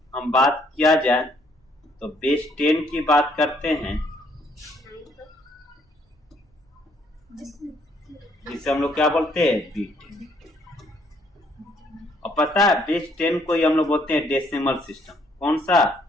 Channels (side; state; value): both; normal; correlation 0.67